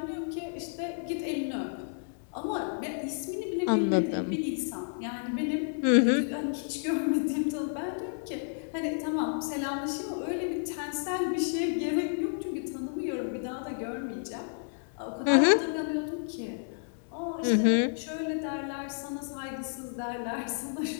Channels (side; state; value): right; silent; 57 dB below the other